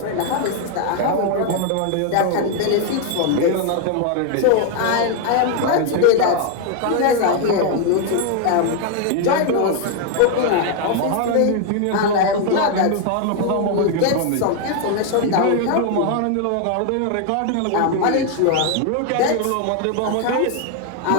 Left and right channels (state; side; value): different; both; correlation 0.01